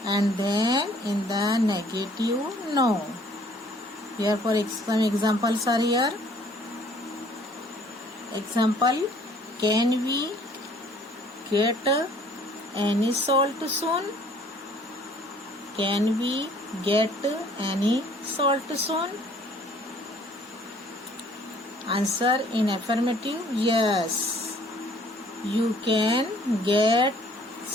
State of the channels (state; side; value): normal; both; correlation 0.58